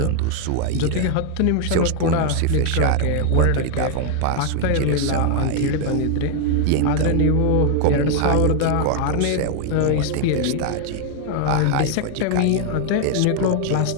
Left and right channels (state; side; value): different; both; correlation 0.00